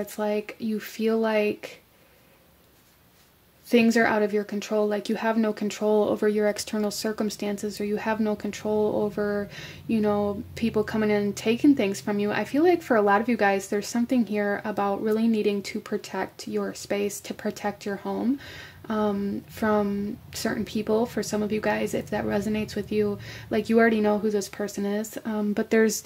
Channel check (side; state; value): both; identical; correlation 1.00